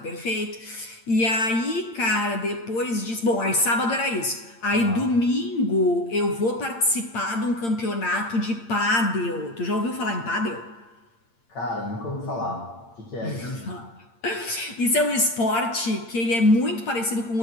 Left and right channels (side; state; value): right; late; 8.8 ms